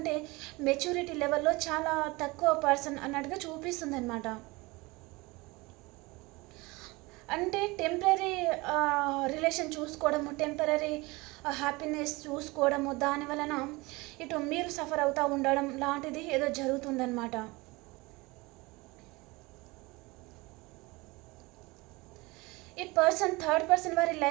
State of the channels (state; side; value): quieter; left; 23.6 dB